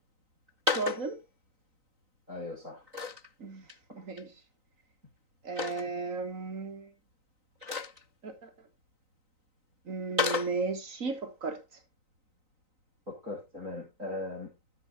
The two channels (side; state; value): left; late; 3.9 ms